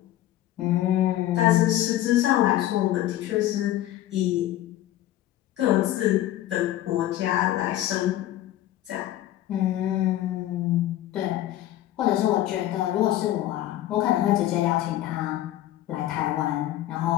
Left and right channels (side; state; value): right; quieter; 13.7 dB